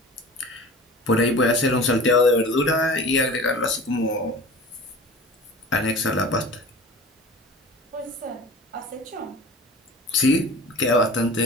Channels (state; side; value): normal; both; correlation 0.40